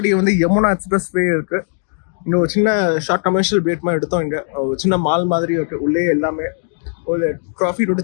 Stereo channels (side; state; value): right; silent; digital silence